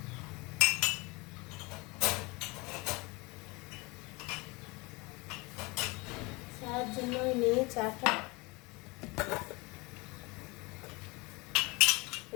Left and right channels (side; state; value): right; quieter; 25.7 dB